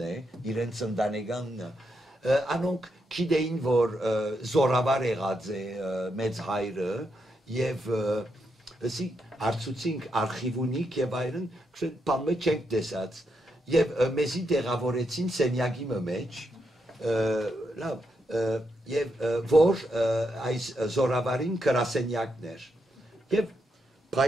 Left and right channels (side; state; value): both; normal; correlation 0.81